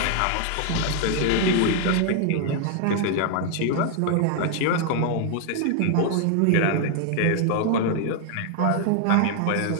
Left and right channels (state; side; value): different; both; correlation 0.00